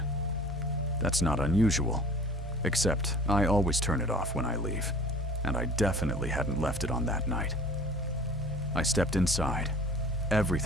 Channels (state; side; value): normal; both; correlation 0.45